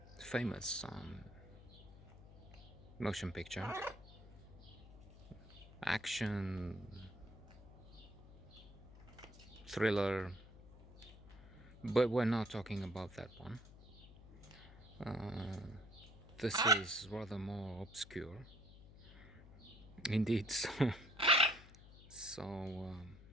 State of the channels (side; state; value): left; noise; hum, 18 dB below the sound